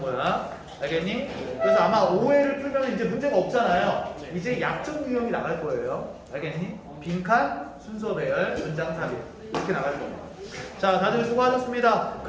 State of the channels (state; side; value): identical; both; correlation 1.00